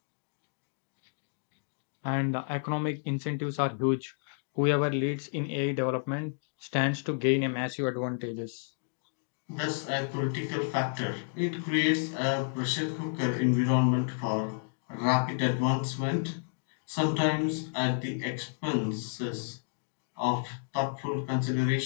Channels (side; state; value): right; silent; digital silence